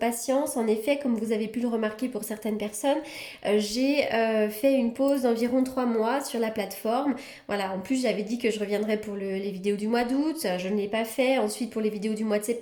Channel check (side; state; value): both; identical; correlation 1.00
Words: En effet, comme vous avez pu le remarquer pour certaines personnes, j'ai fait une pause d'environ 3 mois sur la plateforme. Voilà, en plus j'avais dit que je reviendrais pour les vidéos du mois d'août, je ne l'ai pas fait. Ensuite pour les vidéos du mois de